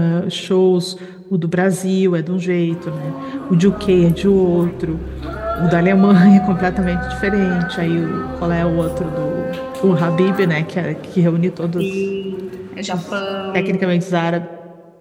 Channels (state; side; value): identical; both; correlation 1.00